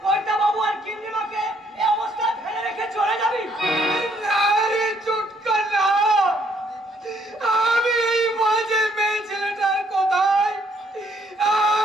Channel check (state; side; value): normal; both; correlation 0.68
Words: কর্তা বাবু আর গিন্নিমাকে এই অবস্থায় ফেলে রেখে চলে যাবি? না রে চুটকা না, আমি এই বাজে মেয়ে ছেলেটার কথায়